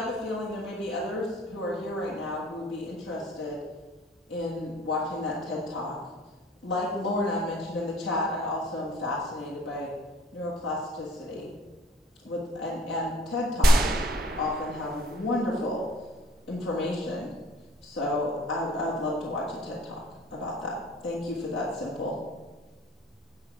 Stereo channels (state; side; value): normal; both; correlation 0.51